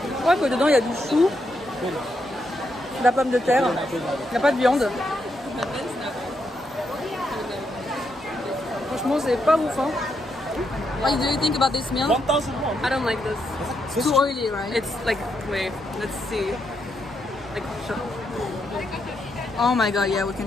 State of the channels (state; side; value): normal; both; correlation 0.80